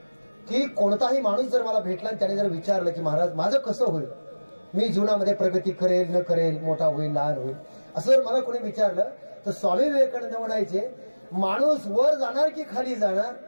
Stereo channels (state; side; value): inverted; both; correlation -1.00